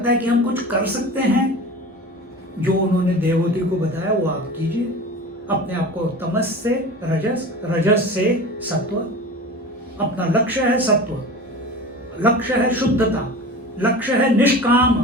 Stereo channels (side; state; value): both; normal; correlation 0.34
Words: है कि हम कुछ कर सकते हैं, जो उन्होंने देवहूति को बताया वो आप कीजिए। अपने आप को तमस से रजस, रजस से सत्व। अपना लक्ष्य है सत्व, लक्ष्य है शुद्धता, लक्ष्य है निष्काम